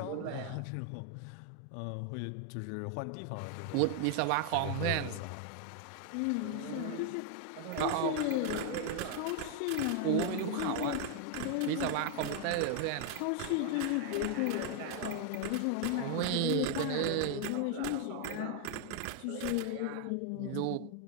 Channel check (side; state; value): both; different; correlation 0.00